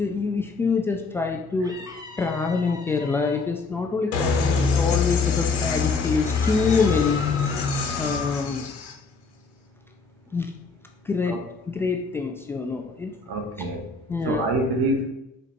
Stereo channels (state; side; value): quieter; right; 4.0 dB